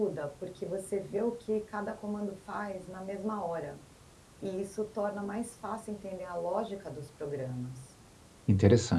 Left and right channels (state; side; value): identical; both; correlation 1.00